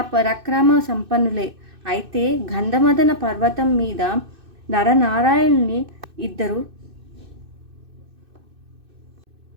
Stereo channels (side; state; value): left; late; 2.6 ms